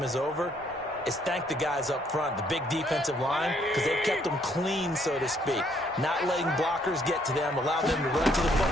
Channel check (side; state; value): both; normal; correlation 0.68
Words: is over is thank the guys up front, the big defensive line, because they've kept them clean, so to speak. Not letting blockers get to them, allow them to run to the